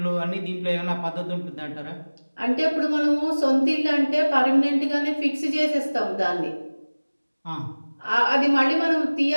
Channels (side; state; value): both; inverted; correlation -1.00